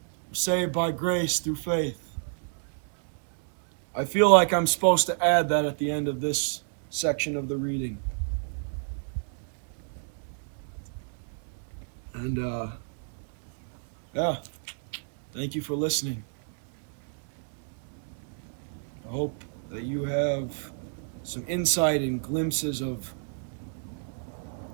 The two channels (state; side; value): silent; left; digital silence